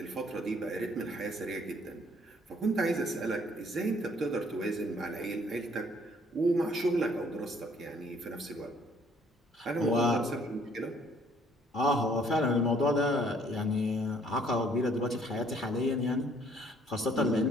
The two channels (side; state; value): both; normal; correlation 0.62